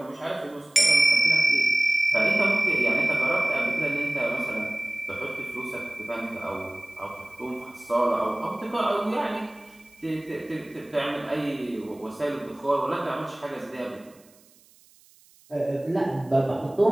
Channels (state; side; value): noise; right; hiss, 29 dB below the sound